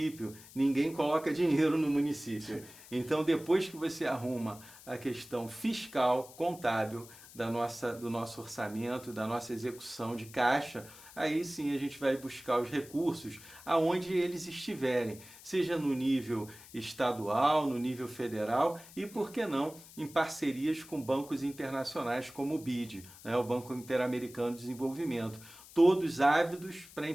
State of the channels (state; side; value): noise; left; hiss, 19 dB below the sound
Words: ninguém coloca dinheiro no município. Então, depois que você arruma a questão fiscal, contábil, do nosso orçamento, da nossa execução de caixa, aí sim a gente vai buscar os recursos aonde eles estiverem, seja no nível estadual, no nível federal e, por que não, em parcerias com bancos internacionais como o BID, né, o Banco Interamericano de Desenvolvimento, todos ávidos para